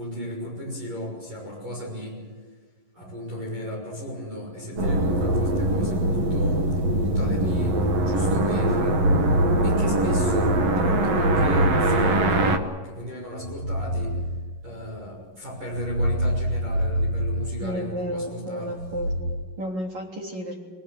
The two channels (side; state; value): left; late; 11 ms